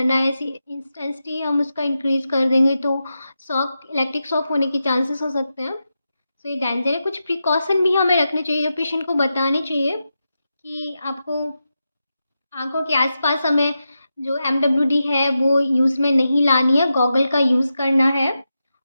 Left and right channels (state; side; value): inverted; both; correlation -0.89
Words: है, ऐसी इंटेंसिटी हम उसका इंक्रीज़ कर देंगे तो शॉक, इलेक्ट्रिक शॉक होने के चांसेस हो सकते हैं। तो ये डेंजर है। कुछ प्रिकॉशन भी हमें रखने चाहिए, जो पेशेंट को बताने चाहिए कि आपको आंखों के आसपास हमें जो एमडब्ल्यूडी है वो यूज़ में नहीं लानी है, गॉगल का यूज़ करना है।